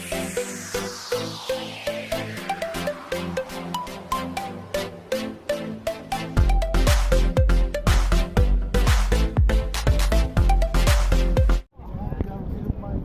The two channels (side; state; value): both; identical; correlation 1.00